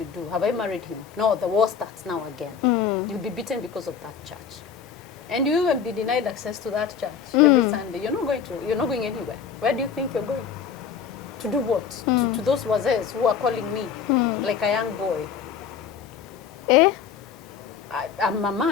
do? Have I married him? No, the war starts now again. You'll be beaten because of that church. And you even be denied access to that church every Sunday. You're not going anywhere. Where do you think you're going? To do what? To those wazes who are calling me like a young boy. I'm a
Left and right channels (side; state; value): right; quieter; 6.9 dB